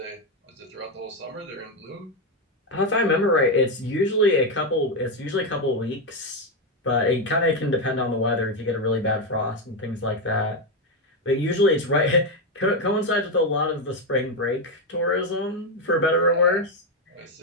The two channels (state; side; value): normal; both; correlation 0.07